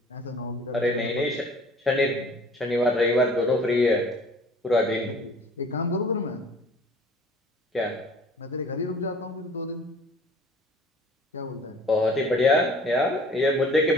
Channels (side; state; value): both; normal; correlation 0.49